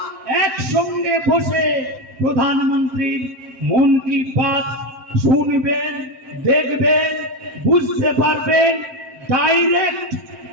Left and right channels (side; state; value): left; late; 7.7 ms